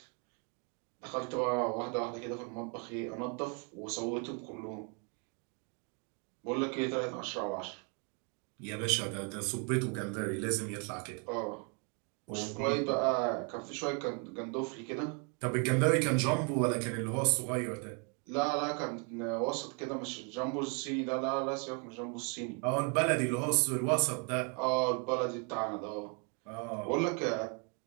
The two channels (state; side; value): quieter; left; 36.7 dB